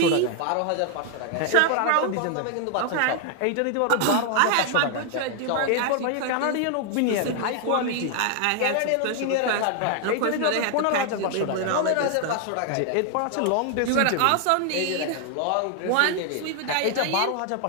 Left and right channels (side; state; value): both; different; correlation 0.00